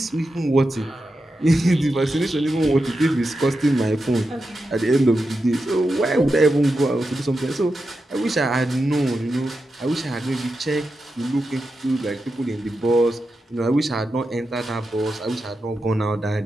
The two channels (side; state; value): both; normal; correlation 0.89